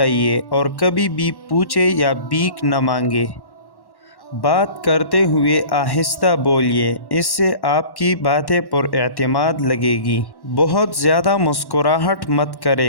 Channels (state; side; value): late; right; 1.1 ms